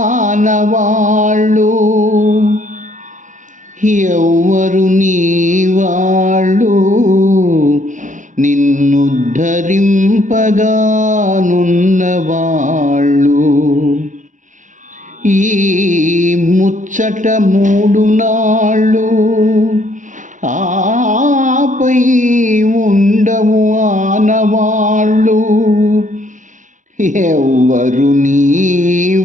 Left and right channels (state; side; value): late; left; 0.37 ms